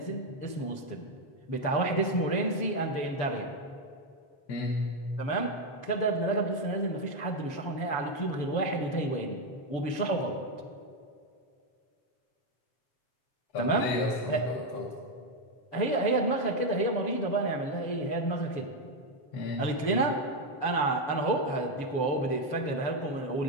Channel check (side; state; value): right; late; 7.0 ms